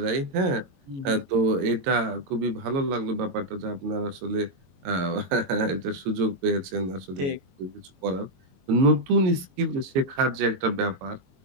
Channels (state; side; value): late; left; 22 ms